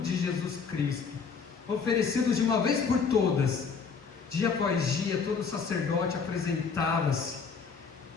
Jesus Cristo, oferecidos de uma vez por todas. Dia após dia, todo sacerdote apresentava-se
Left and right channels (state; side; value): quieter; right; 5.7 dB